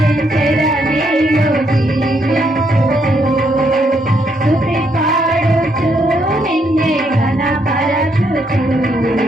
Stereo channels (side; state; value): both; normal; correlation 0.74